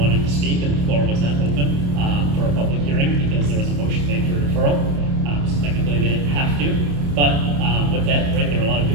to speak, and the floor was not open for a public hearing because there was a motion made for deferral. So technically they didn't have to. But with that, right, there were a lot of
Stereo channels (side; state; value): left; late; 28 ms